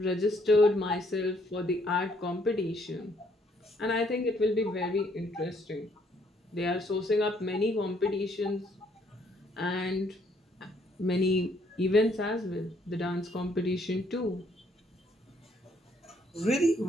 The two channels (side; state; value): both; normal; correlation 0.68